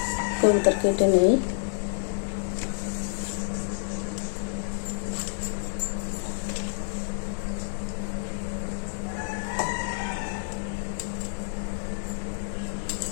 কবুতর কেটে নেই।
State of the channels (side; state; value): right; silent; 59 dB below the other